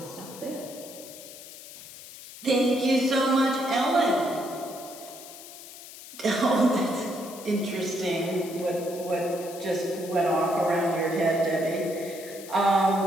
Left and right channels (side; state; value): left; noise; hiss, 15 dB below the sound